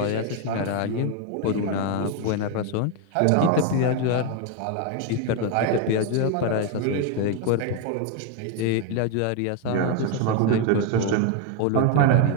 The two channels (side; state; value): both; different; correlation 0.01